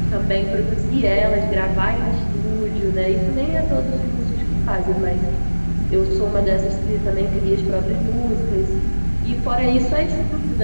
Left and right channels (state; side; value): inverted; both; correlation -1.00